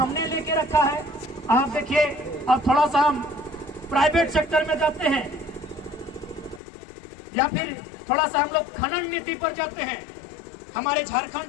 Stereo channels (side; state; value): right; drops out; at 6.6 s